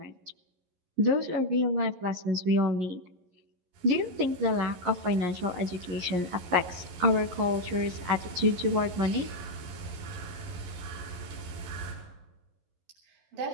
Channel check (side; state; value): left; late; 11 ms